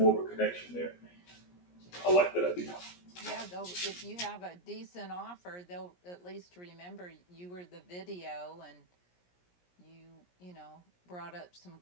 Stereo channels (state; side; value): late; right; 17 ms